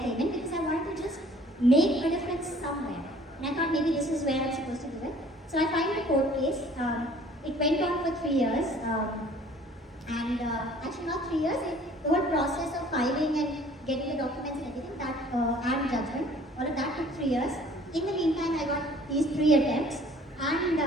came in, because I wanted to just make a difference somewhere. And I thought maybe this is where I'm supposed to do it. So I filed a court case. It went on for 3 years. Actually not 3 years, the whole process of filing and getting the documents and everything, and judgment, all of that took 3 years. In the meantime, I got these 3 attempts, and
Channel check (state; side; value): normal; both; correlation 0.53